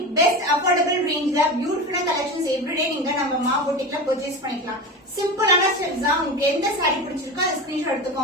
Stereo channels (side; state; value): both; normal; correlation 0.26